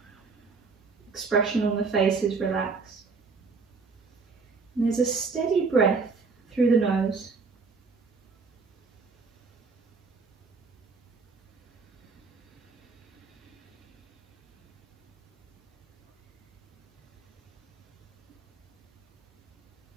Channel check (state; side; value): quieter; left; 4.7 dB